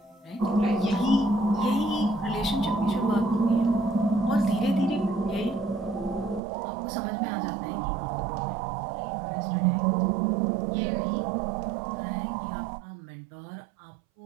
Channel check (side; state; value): left; drops out; at 6.4 s